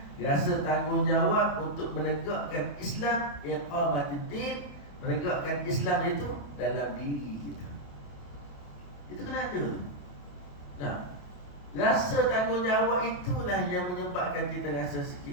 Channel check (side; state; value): right; late; 28 ms